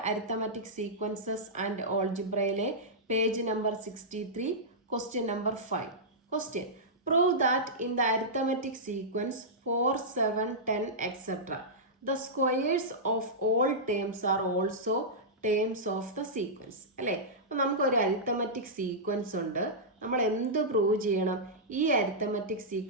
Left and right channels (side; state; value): both; normal; correlation -0.13